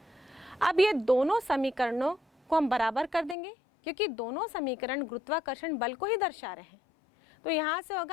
अब ये दोनों समीकरणों को हम बराबर कर देंगे, क्योंकि दोनों समीकरण गुरुत्वाकर्षण बल को ही दर्शा रहे हैं। तो यहाँ से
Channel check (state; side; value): drops out; right; at 3.4 s